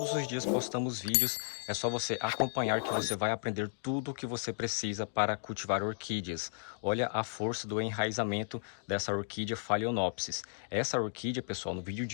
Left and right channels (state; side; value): silent; right; digital silence